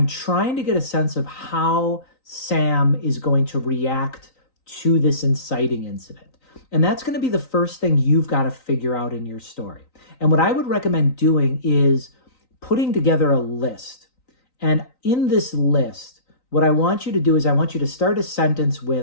trying to get a sense of how Sam is going to react to this inciting incident. And that's going to be the first thing you've got to figure out in your story. And what I would recommend doing is putting together a list. And in this list, what I want you to do is I want you to start a sentence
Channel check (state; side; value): late; right; 3.9 ms